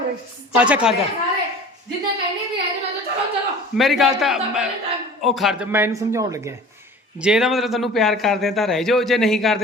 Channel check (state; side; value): normal; both; correlation 0.43